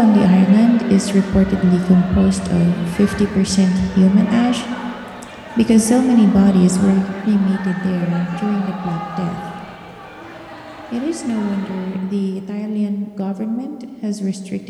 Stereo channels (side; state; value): both; identical; correlation 1.00